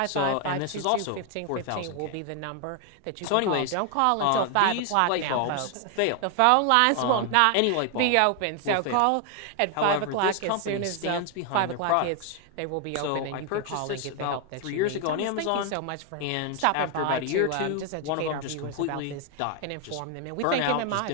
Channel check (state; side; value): different; both; correlation 0.01